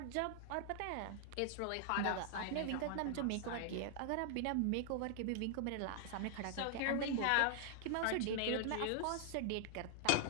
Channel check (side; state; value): both; different; correlation 0.00